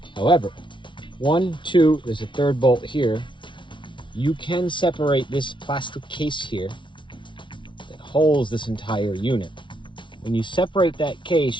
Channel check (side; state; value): right; late; 0.24 ms